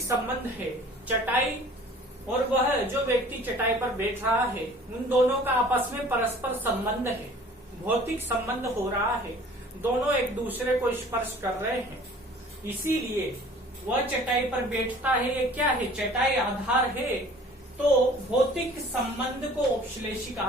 संबंध है। चटाई और वह जो व्यक्ति चटाई पर बैठ रहा है, उन दोनों का आपस में परस्पर संबंध है, भौतिक संबंध हो रहा है। दोनों एक दूसरे को स्पर्श कर रहे हैं। इसीलिए वह चटाई पर बैठता है। ये क्या है? चटाई आधार है। तो भौतिक संबंध को औपश्लेषिक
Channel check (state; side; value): normal; both; correlation 0.49